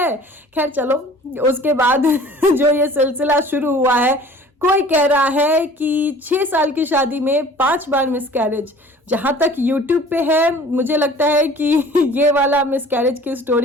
खैर चलो, उसके बाद जो ये सिलसिला शुरू हुआ है, कोई कह रहा है कि 6 साल की शादी में 5 बार मिसकैरेज। जहां तक यूट्यूब पे है, मुझे लगता है कि ये वाला मिसकैरेज की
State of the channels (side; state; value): both; normal; correlation 0.47